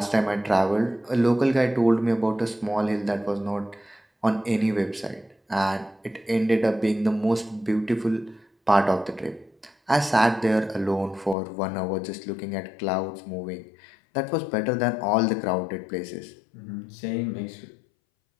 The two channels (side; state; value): right; drops out; at 11.4 s